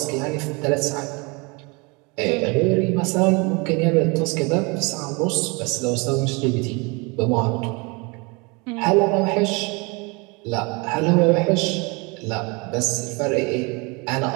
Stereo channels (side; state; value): left; quieter; 28.7 dB